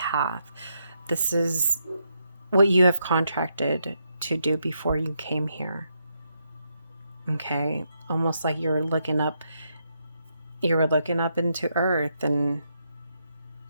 This is what you have contracted to do before you came here. Okay? Almost like you were looking up into Earth and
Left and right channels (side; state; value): both; inverted; correlation -0.80